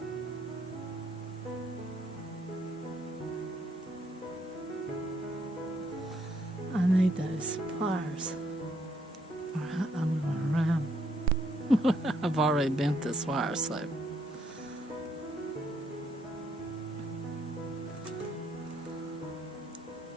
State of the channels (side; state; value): both; normal; correlation 0.72